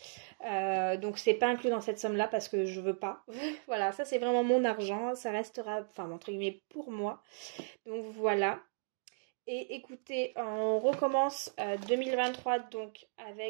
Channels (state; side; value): silent; left; digital silence